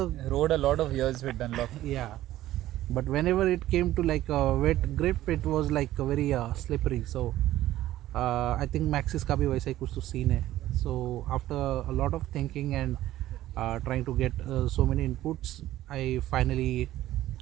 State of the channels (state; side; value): quieter; left; 14.4 dB